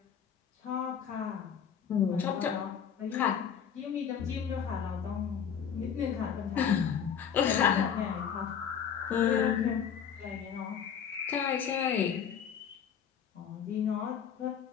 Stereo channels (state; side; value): quieter; right; 7.9 dB